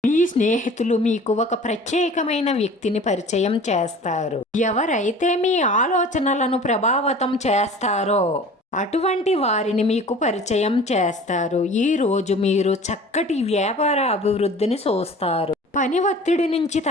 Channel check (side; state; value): both; normal; correlation 0.44